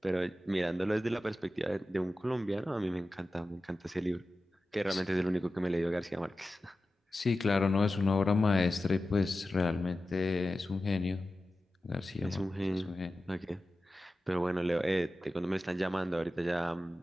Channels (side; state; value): both; normal; correlation 0.93